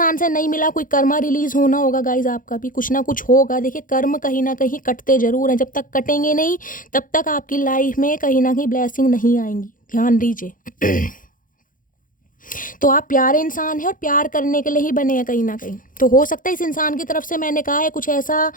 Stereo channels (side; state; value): right; late; 0.39 ms